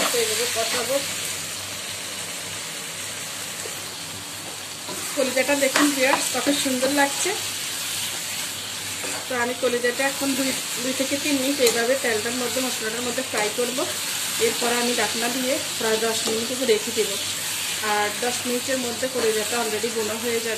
এইভাবে কষাবো। কলিজাটা দেখুন ভিউয়ার্স কত সুন্দর লাগছে। তো আমি কলিজাটা এখন 2 থেকে 3 মিনিট এইভাবে তেলটার মধ্যে মশলাটার মধ্যে ফ্রাই করব। এরপর আমি ঢাকনা দিয়ে প্রায় 10 মিনিট রেখে দেবো। আর 10 মিনিটের মধ্যে কলিজাটা অলরেডি বোনা হয়ে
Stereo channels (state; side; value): identical; both; correlation 1.00